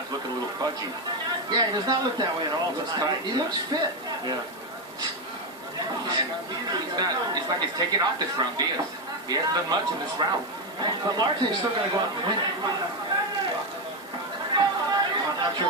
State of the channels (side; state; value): both; normal; correlation 0.09